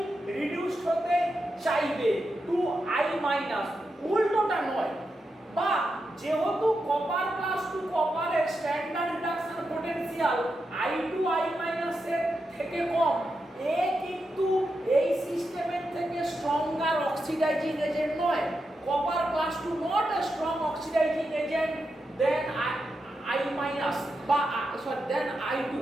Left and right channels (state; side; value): normal; both; correlation 0.87